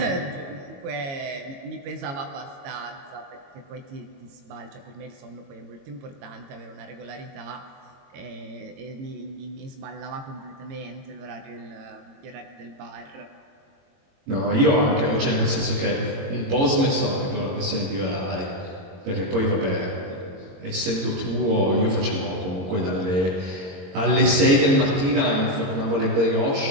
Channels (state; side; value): late; left; 22 ms